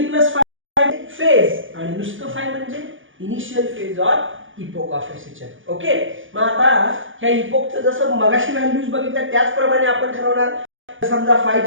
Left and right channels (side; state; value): left; late; 0.57 ms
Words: प्लस फेज आणि नुसतं फाय म्हणजे initial phase or epoch of SHM. Okay, मग आता ह्या इपोकचं जसं मगाशी व्हॅल्यूज बघितल्या त्याचप्रमाणे आपण ठरवणार. समजा